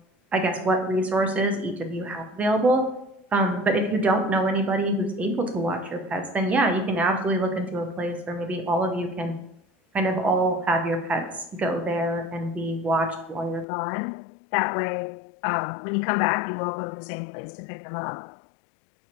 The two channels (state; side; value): drops out; right; at 13.7 s